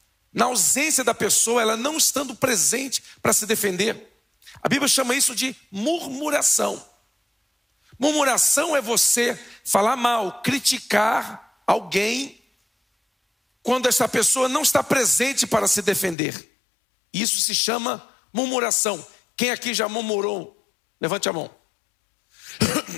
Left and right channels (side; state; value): right; drops out; at 16.2 s